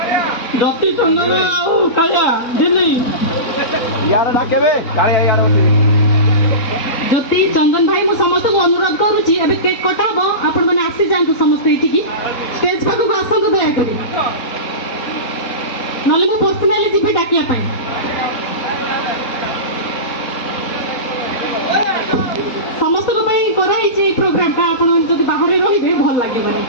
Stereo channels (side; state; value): right; late; 4.1 ms